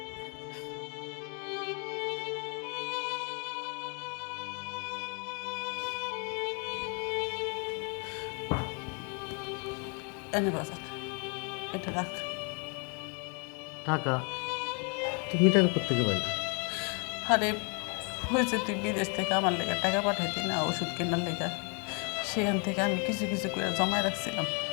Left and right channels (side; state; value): right; quieter; 36.4 dB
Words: এনে বাজার, এটা রাখ। টাকা? তুমি টাকা করতে পারবে? আরে হয়েছে, তুই বিদেশ থেকে আমার লেগে টাকা পাঠাইতি না ওষুধ কেনার লেগে, সেখান থেকে আমি কিছু কিছু করে জমায় রাখছিলাম।